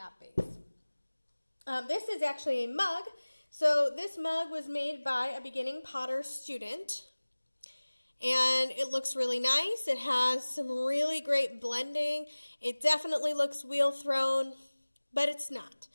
base. This is actually a mug. So this mug was made by a beginning potter student, and it looks really nice. It has some really great blending. It definitely looks wheel thrown, but it's not.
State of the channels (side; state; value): both; inverted; correlation -1.00